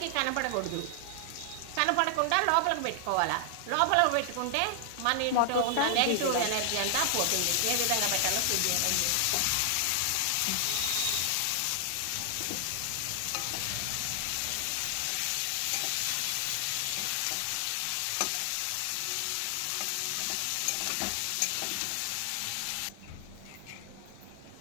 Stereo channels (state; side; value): different; both; correlation 0.00